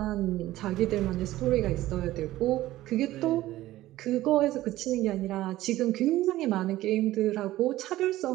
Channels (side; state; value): left; quieter; 15.7 dB